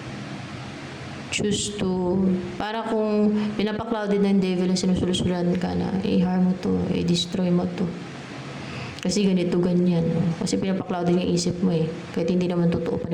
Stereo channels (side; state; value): both; identical; correlation 1.00